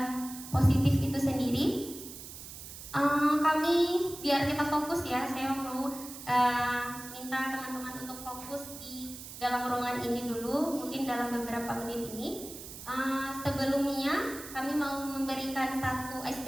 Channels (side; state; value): right; noise; hiss, 12 dB below the sound